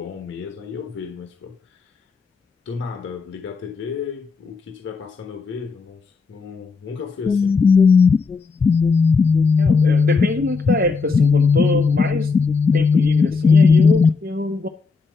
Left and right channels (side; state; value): right; quieter; 4.7 dB